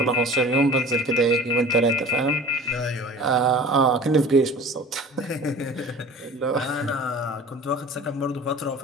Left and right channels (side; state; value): both; normal; correlation 0.41